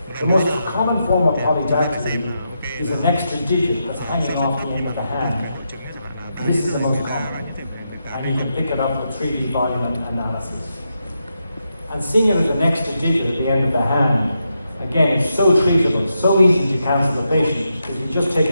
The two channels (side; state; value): both; inverted; correlation -0.84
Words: The most common form of polydactyly is an extra digit that's hanging off the end of the hand. This is the most common, and you can pick it up with 3D volume analysis. And seeing it as an extra digit at the end of the hand, again, it's so treatable, so easy to cancel the patient, because you just take